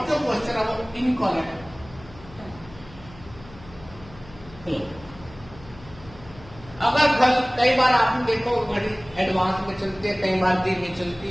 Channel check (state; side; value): noise; left; hum, 20 dB below the sound